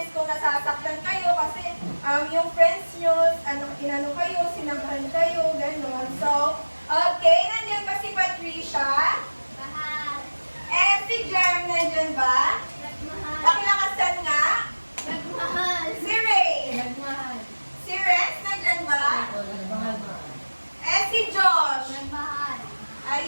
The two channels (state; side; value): inverted; both; correlation -1.00